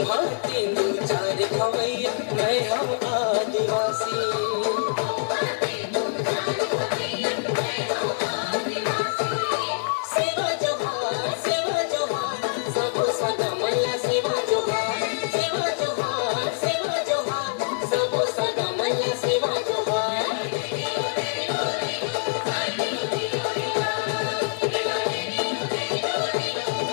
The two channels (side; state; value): right; silent; 60 dB below the other